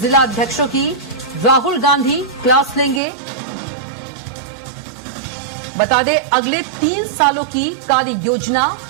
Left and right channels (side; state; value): left; drops out; at 3.0 s